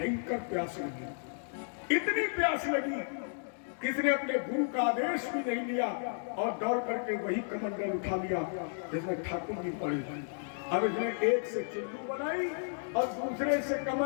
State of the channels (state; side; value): silent; right; digital silence